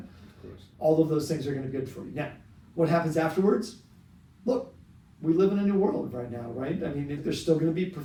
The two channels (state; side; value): identical; both; correlation 1.00